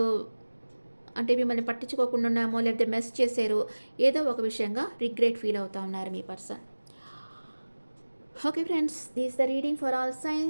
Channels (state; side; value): inverted; both; correlation -1.00